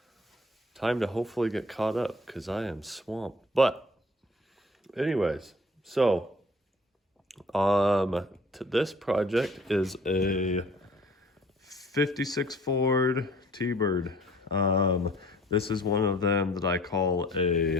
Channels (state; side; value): normal; both; correlation 0.53